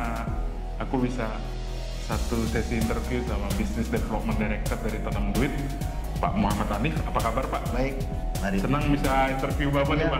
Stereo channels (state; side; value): identical; both; correlation 1.00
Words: aku bisa satu sesi interview sama Business Development Director dari Tanam Duit, Pak Muhammad Hanif. Apa kabar Pak? Baik, mari. Senang bisa interview Bapak nih